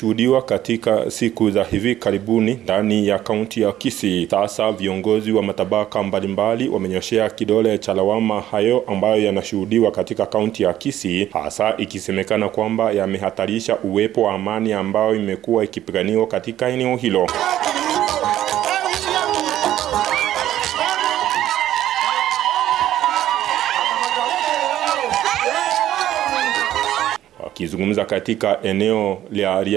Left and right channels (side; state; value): left; quieter; 12.6 dB